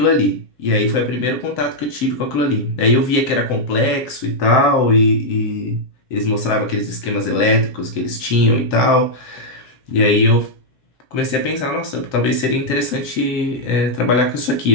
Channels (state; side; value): late; right; 7.8 ms